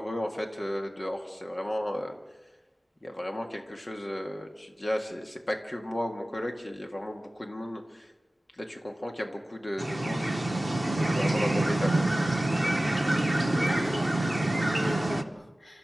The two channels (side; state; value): both; normal; correlation 0.97